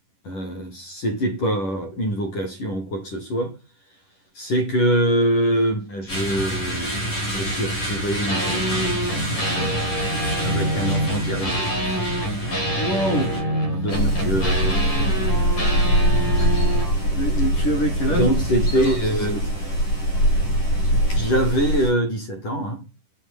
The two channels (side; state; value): right; late; 10 ms